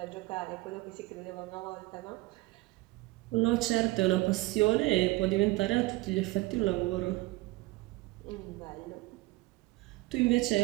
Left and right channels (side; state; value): left; quieter; 20.8 dB